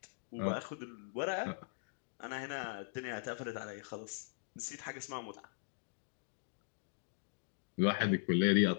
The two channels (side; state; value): right; silent; digital silence